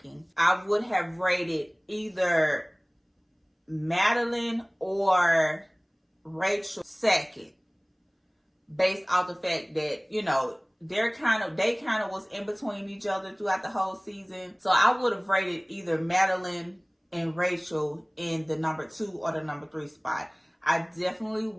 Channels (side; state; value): both; identical; correlation 1.00